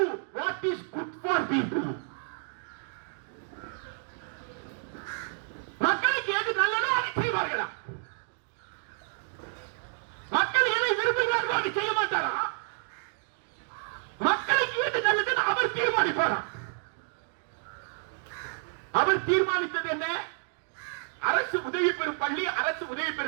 what is good for people. மக்களுக்கு எது நல்லதோ அதை செய்வார்களா? மக்கள் எதை விரும்புகிறார்களோ அதை செய்ய மாட்டாரா? மக்களுக்கு எது நல்லதுன்னு அவர் தீர்மானிப்பாரா? அவர் தீர்மானித்தது என்ன? அரசு உதவி பெறும் பள்ளி, அரசு உதவி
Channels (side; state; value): left; silent; 58 dB below the other